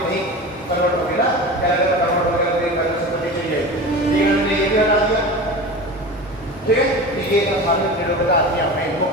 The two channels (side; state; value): both; normal; correlation 0.31